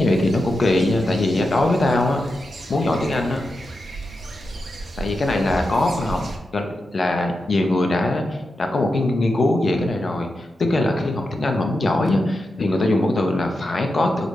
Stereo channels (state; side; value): normal; both; correlation 0.89